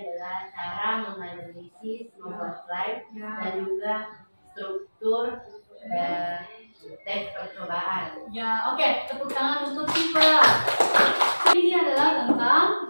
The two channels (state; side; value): inverted; both; correlation -1.00